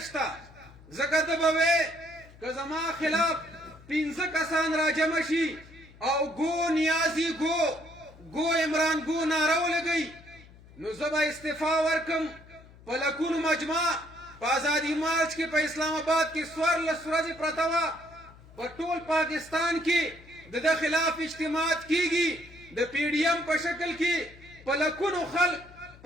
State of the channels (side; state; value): left; noise; hum, 22 dB below the sound